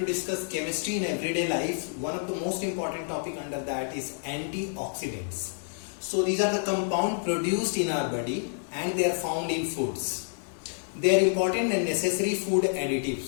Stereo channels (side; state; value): right; silent; digital silence